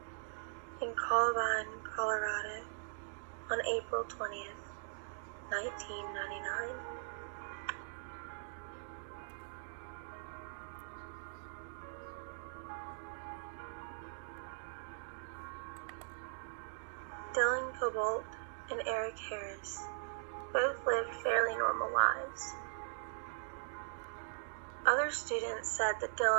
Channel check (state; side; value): silent; left; digital silence